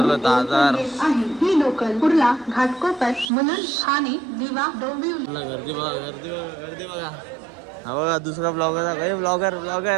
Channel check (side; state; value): left; drops out; at 3.3 s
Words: दादर ही लोकल कुर्ला, घाटकोपर, मुलुंड, ठाणे, दिवा, डोंबिवली. गर्दी बघा, गर्दी बघा, गर्दी बघा. हा बघा दुसरा ब्लॉगर आहे. ब्लॉगर